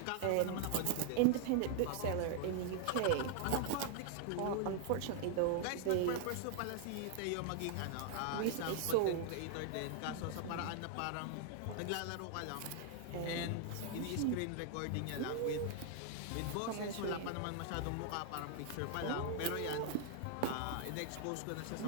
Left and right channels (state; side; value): different; both; correlation 0.00